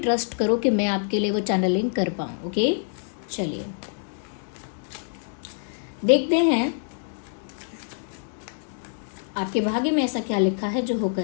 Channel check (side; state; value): right; silent; 61 dB below the other